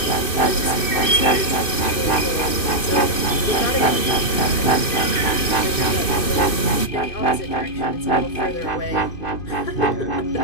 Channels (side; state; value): right; late; 2.6 ms